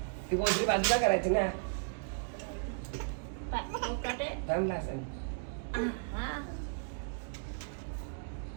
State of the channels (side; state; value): left; silent; digital silence